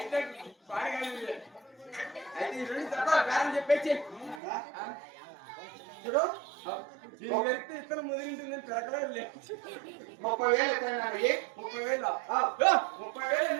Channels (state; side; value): drops out; left; at 4.4 s